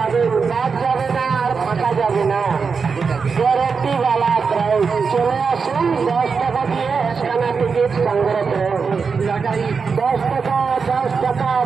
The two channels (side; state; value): left; quieter; 5.3 dB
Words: বাদ যাবে না আর ফাঁকা যাবে না, গ্যারেন্টি वाला প্রাইজ। চলে আসুন, 10 টাকা দিয়ে 1 খানা টিকিট সংগ্রহ করুন। লটারি 10 টাকা, 10 টাকা,